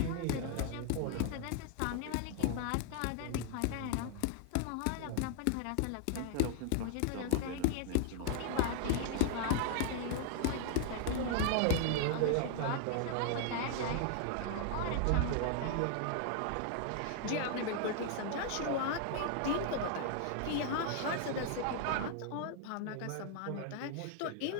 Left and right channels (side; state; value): both; different; correlation 0.00